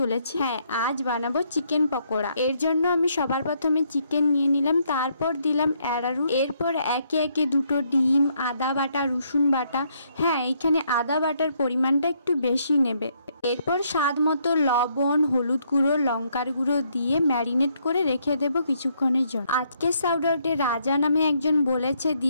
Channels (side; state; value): both; inverted; correlation -0.72